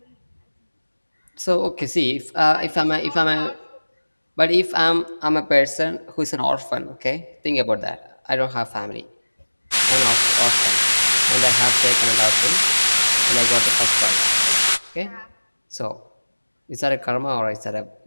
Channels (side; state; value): both; inverted; correlation -1.00